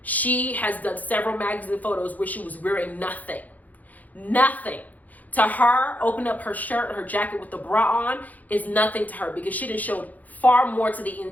She has done several magazine photos where she was wearing nothing. Nothing. To her, open up her shirt or her jacket with the bra on is nothing to her because she done showed far more to the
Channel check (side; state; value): right; late; 0.080 ms